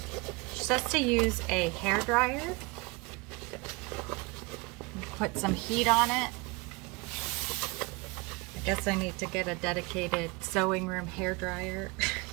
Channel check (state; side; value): quieter; left; 25.8 dB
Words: She says to use a hair dryer. Put some heat on it. I guess I need to get a dedicated sewing room hair dryer.